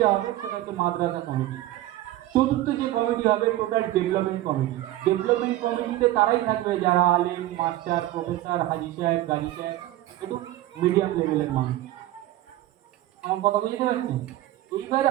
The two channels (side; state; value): left; quieter; 15.2 dB